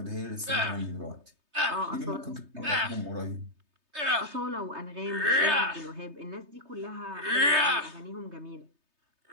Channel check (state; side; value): late; left; 3.2 ms